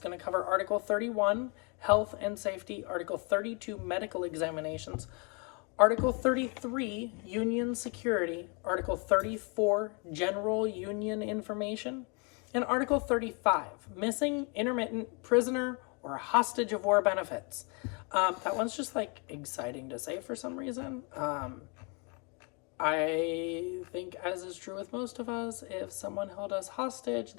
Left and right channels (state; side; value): quieter; right; 33.6 dB